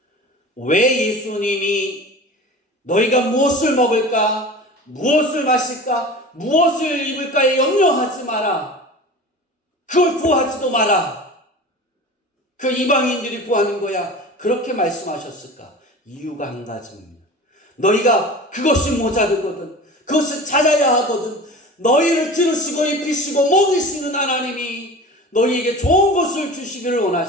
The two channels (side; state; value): both; normal; correlation 0.36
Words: 왜 예수님이 너희가 무엇을 먹을까? 무엇을 마실까? 무엇을 입을까에 염려하지 마라. 그걸 구하지도 마라. 그 이방인들이 구하는 거야. 그렇게 말씀하셨을까? 이유가 한 가지입니다. 너희가 그것이 모자르거든. 그것을 찾아야 하거든. 너희를 들으시고 입히시고 먹이시는 하나님이 너희에게 좋은 것을 주시기를